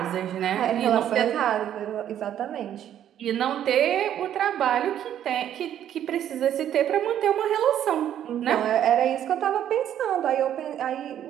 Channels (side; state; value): left; quieter; 10.6 dB